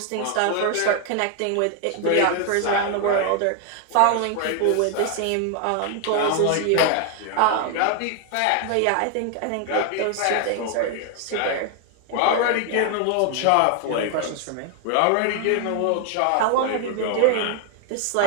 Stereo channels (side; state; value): both; different; correlation 0.00